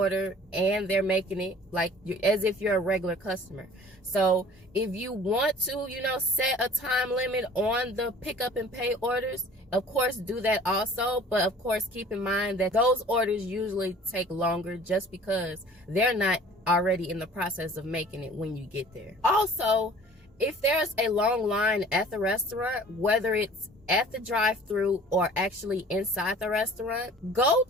and they're making it like as if you're a regular customer. So if you want to, set a time limit on the pickup and pay orders, of course, do that also. But of course, keep in mind that those orders usually take longer just because they're not already in the process of making it when you get there. Also, if there's a long line at the restaurant, whether it's at the drive-thru or actually inside the restaurant, go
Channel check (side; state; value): both; normal; correlation 0.48